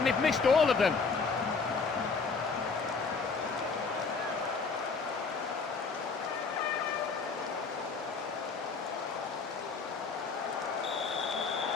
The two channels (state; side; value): quieter; right; 4.8 dB